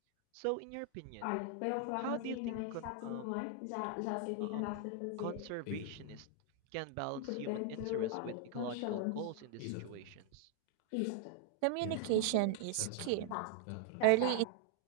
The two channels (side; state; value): both; different; correlation 0.00